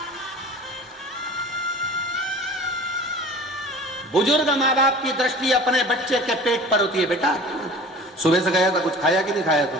बुजुर्ग माँ बाप की दृष्टि अपने बच्चे के पेट पर होती है। बेटा सुबह से गया था, कुछ खाया कि नहीं खाया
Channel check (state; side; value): normal; both; correlation 0.42